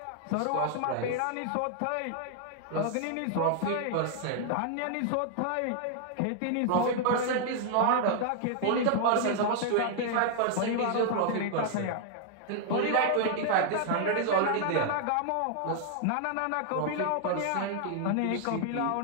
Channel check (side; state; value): both; different; correlation 0.00